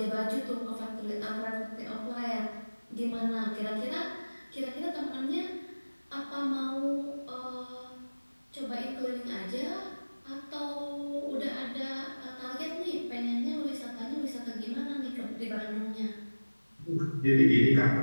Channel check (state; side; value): inverted; both; correlation -1.00